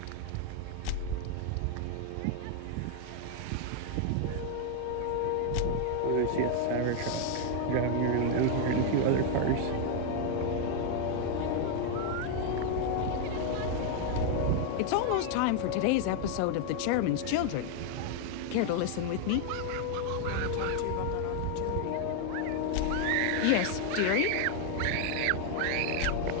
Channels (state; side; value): different; both; correlation 0.00